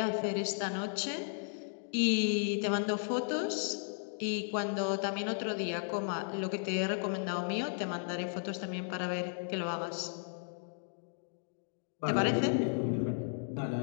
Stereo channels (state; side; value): silent; right; digital silence